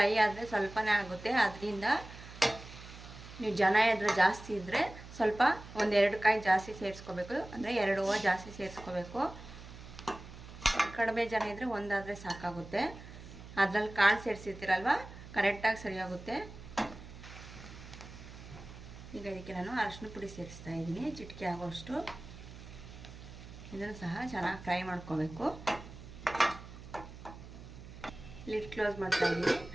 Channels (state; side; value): noise; right; hum, 15 dB below the sound